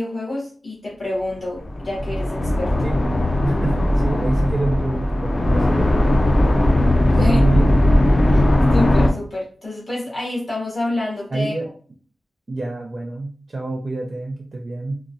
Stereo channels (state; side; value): normal; both; correlation 0.96